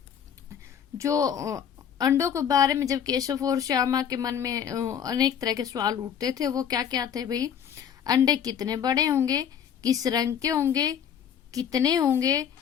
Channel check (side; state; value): right; quieter; 8.5 dB